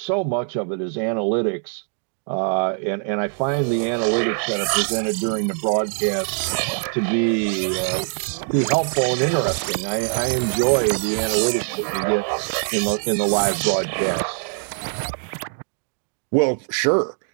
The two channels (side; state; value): left; silent; 57 dB below the other